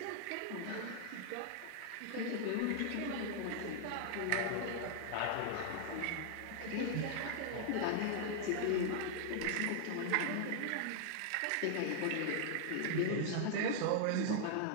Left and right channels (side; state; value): both; different; correlation -0.01